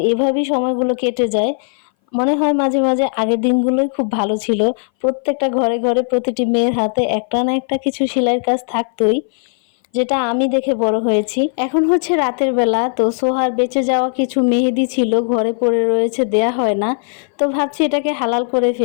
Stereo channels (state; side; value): silent; right; 61 dB below the other